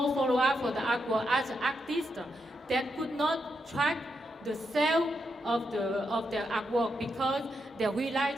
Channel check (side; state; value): both; normal; correlation 0.83